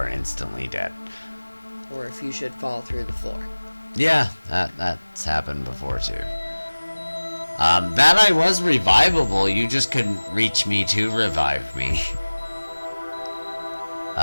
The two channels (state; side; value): inverted; both; correlation -1.00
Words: instantly dead. Or if you should fall through the floor. Yeah, that's happened before too. That I was revivable, you just couldn't reach me to revive me.